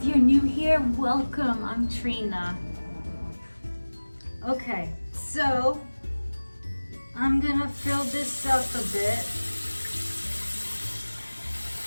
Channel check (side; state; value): both; inverted; correlation -1.00